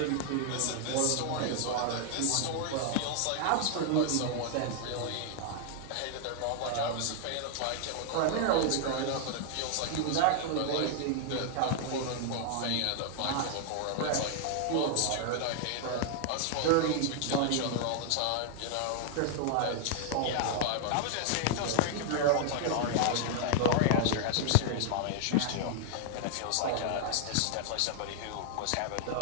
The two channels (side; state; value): both; different; correlation 0.00